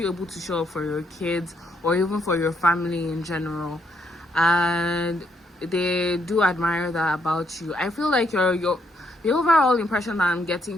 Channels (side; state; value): both; normal; correlation 0.74